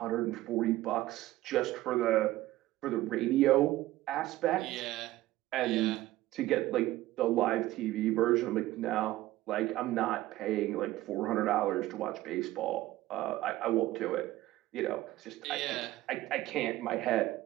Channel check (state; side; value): quieter; left; 16.3 dB